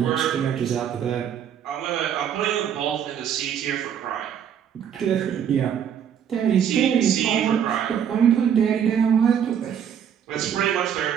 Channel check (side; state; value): left; quieter; 8.6 dB